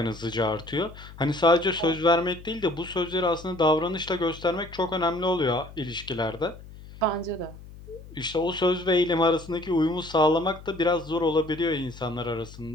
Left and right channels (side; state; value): left; noise; hum, 17 dB below the sound